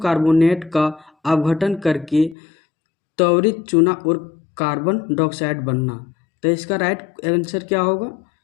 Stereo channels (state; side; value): drops out; right; at 2.4 s